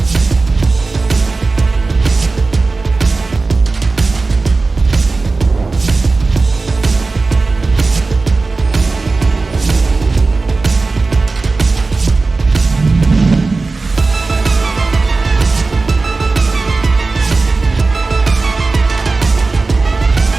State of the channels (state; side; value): quieter; left; 3.7 dB